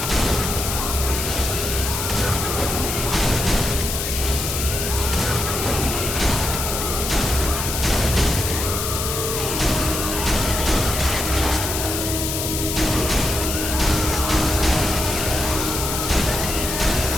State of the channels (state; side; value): noise; left; hiss, 3 dB below the sound